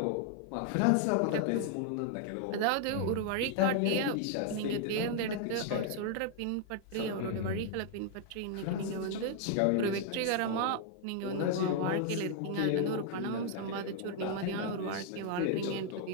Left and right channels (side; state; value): both; different; correlation 0.00